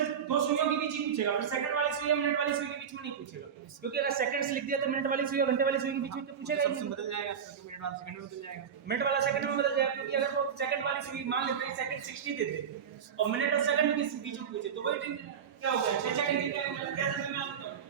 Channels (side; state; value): left; quieter; 7.6 dB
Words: दो सुइयों के बीच ही पूछेगा, फिर सेकंड वाली सुई या मिनट वाली सुई के बीच में नहीं पूछेगा, क्योंकि अगर सेकंड्स लिख दिया तो मिनट वाली सुई और घंटे वाली सुई के बीच में तो पूछेगा ही नहीं। बदल जाएगा, मिनट वाला सेकंड में बदल जाएगा। मिनट वाला सेकंड में बदल जाएगा, क्योंकि अगर वो सेकंड वाली सुई मान लेते हैं सेकंड 60 देते और मिनट और सेकंड के बीच में पूछे तो वही क्या हो गया? 6 डिग्री का